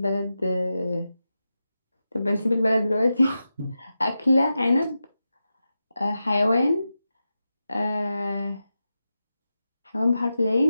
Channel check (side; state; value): both; inverted; correlation -0.90